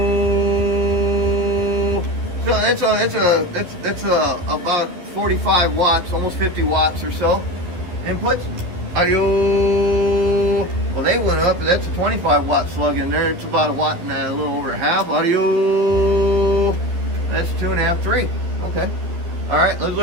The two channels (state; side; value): late; left; 12 ms